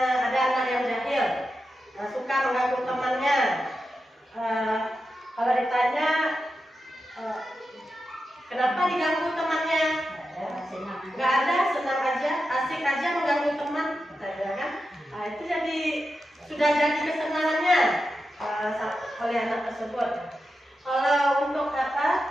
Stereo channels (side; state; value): both; normal; correlation 0.90